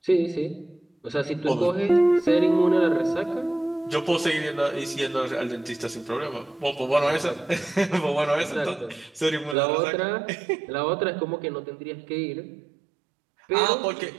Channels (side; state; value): left; drops out; at 9.6 s